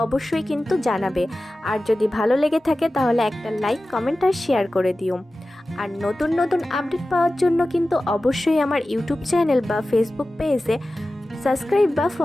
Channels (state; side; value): normal; both; correlation 0.95